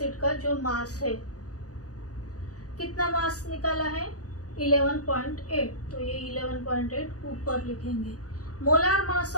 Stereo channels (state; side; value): late; right; 0.67 ms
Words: का जो मास है, कितना मास निकाला है? 11.8। तो ये 11.8 ऊपर लिखेंगे। Molar mass